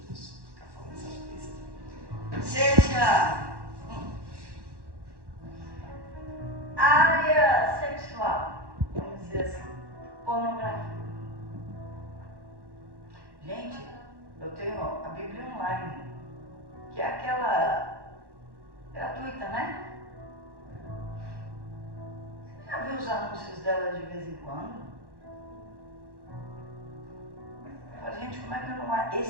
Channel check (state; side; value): late; left; 1.1 ms